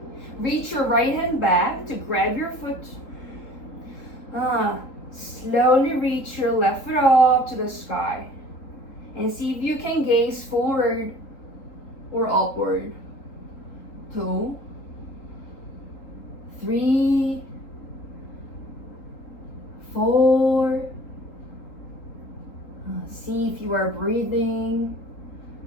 Reach your right hand back to grab your foot. Slowly reach your left foot up to the sky. And see if you can gaze forward or upward. 2, 3, 4. See if you are breathing.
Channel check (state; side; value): late; right; 3.8 ms